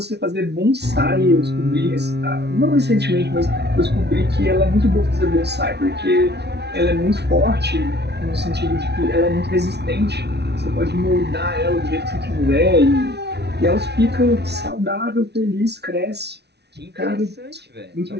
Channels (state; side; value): late; left; 0.49 ms